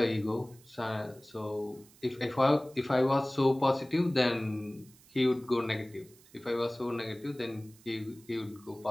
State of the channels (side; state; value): right; noise; hiss, 26 dB below the sound